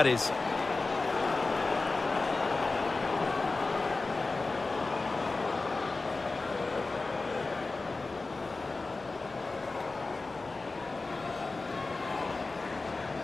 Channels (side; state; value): right; quieter; 3.6 dB